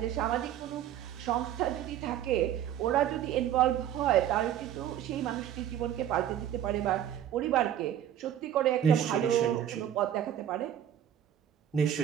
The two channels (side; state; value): left; quieter; 10.7 dB